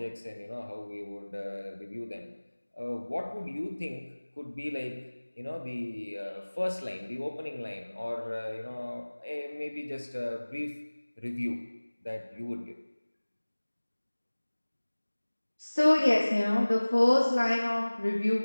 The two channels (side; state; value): both; inverted; correlation -1.00